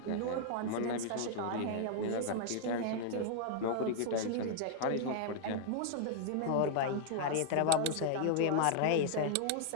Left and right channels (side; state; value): both; different; correlation -0.01